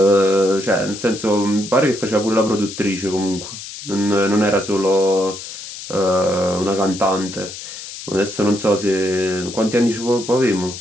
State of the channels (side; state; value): left; noise; hiss, 11 dB below the sound